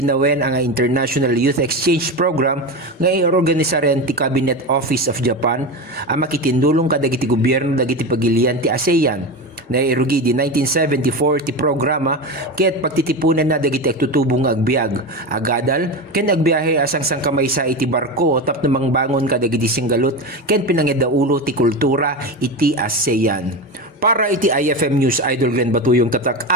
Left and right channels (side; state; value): both; normal; correlation 0.21